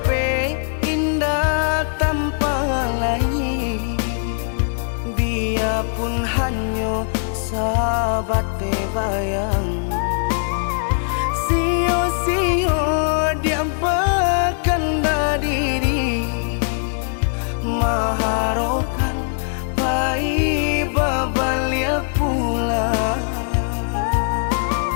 indah tanpa lain, biarpun hanya sahabat bayang. Sio-sio dia berkanda diri, maharokan baik babalia pula.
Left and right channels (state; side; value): silent; right; digital silence